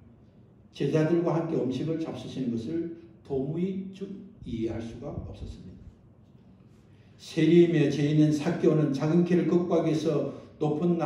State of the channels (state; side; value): identical; both; correlation 1.00